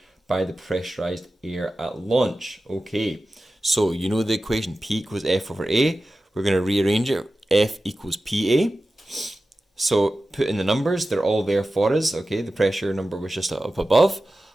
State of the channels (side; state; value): both; normal; correlation 0.94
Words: by the pressurized air at launch. Okay, so you know the equation P equals F over A. We're going to rearrange it. F equals PA. So put in the numbers. They're all there for us. Okay, the pressure number was just up above.